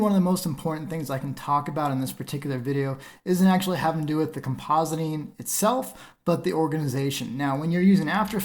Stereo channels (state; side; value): identical; both; correlation 1.00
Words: of the most important things I can talk about in this particular video isn't actually having to do with the compositing itself, but the organization. Now, when you're using After